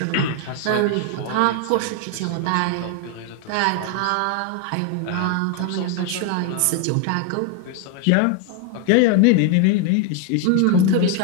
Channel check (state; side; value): different; both; correlation 0.00